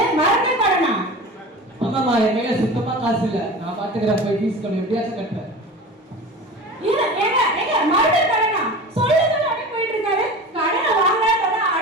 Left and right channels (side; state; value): both; normal; correlation 0.34